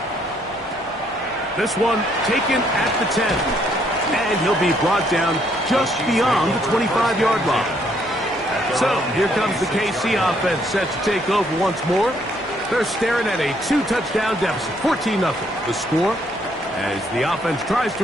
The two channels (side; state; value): left; noise; hum, 27 dB below the sound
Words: This one taken at the 10. And he'll be brought down just beyond the 25-yard line. So here comes the KC offense set to take over once more. They're staring at a 2-touchdown deficit, 14-0. The score as the offense tries to